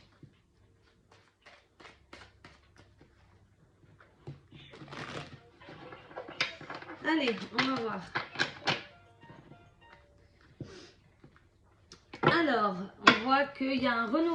Allez, on va voir. Alors, on voit qu'il y a un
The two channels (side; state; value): both; identical; correlation 1.00